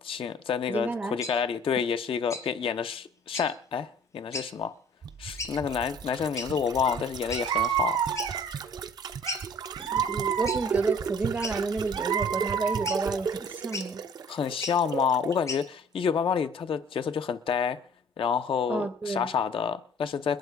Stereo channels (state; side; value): normal; both; correlation 0.52